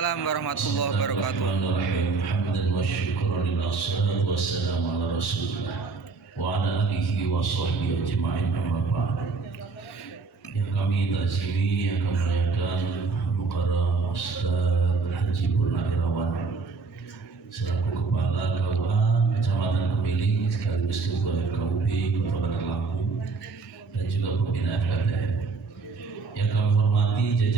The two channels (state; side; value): quieter; left; 4.4 dB